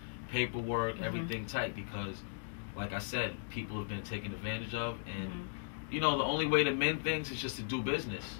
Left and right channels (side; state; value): right; silent; digital silence